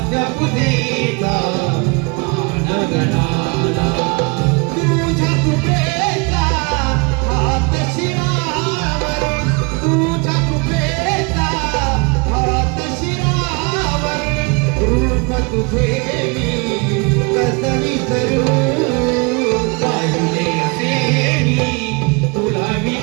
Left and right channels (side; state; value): left; quieter; 30.4 dB